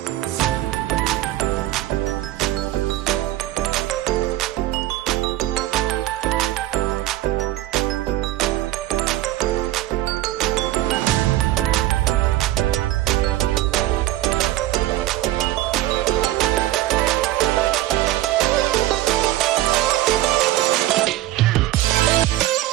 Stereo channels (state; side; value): quieter; left; 15.4 dB